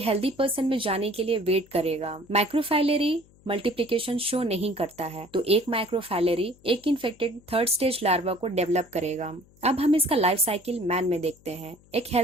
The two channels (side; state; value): left; noise; hum, 28 dB below the sound